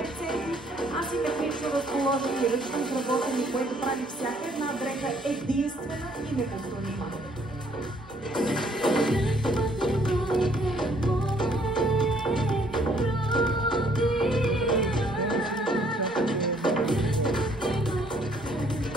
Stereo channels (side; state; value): both; normal; correlation 0.64